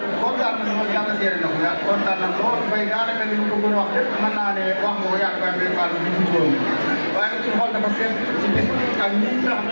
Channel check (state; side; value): inverted; both; correlation -1.00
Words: kontaan nañu lool yàlla seere na ko yàlla kontaan nañu lool bay daanaka li ñu ko gën a wax lépp mën naa ne wax nga ko yaakaar ne Fall bi ñu woon waaye nag suñu xol dafa seet ci bis ak ñi nga xam